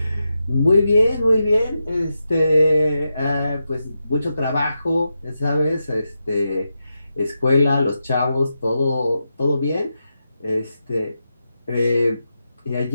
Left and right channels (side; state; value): both; inverted; correlation -0.88